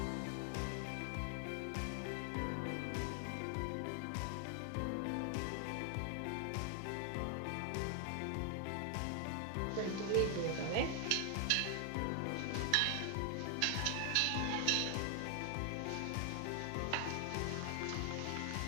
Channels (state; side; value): different; both; correlation 0.00